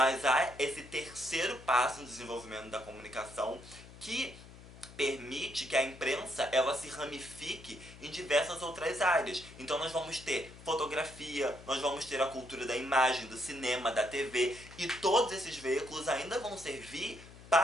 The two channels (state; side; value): noise; left; hum, 18 dB below the sound